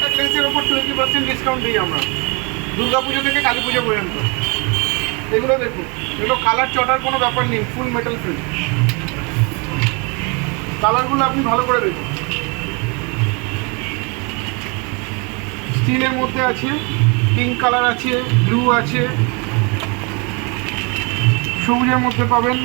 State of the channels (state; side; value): quieter; left; 31.9 dB